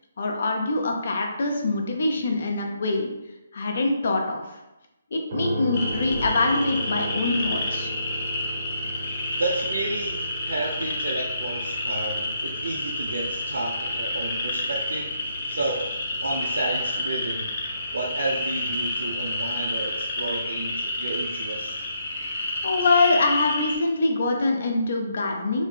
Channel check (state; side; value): inverted; both; correlation -0.76